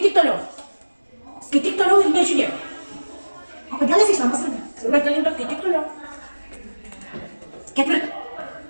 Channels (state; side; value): inverted; both; correlation -1.00